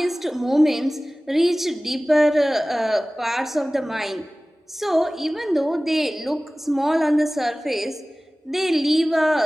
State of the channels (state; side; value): normal; both; correlation 0.98